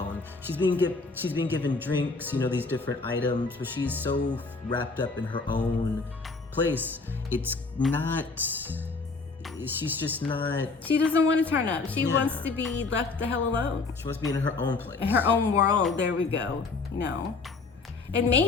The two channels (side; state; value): right; quieter; 4.1 dB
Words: She's being given drinks, you know, these different items, but she's so wrapped up in her own place. She's just not... She doesn't want to turn up. She wants to be left the hell alone. She wants to be in her own place. In her own world, there we go, you know. And